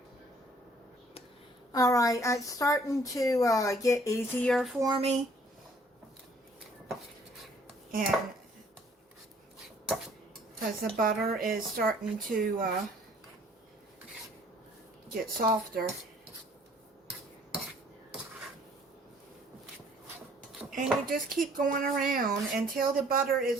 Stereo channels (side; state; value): both; normal; correlation 0.59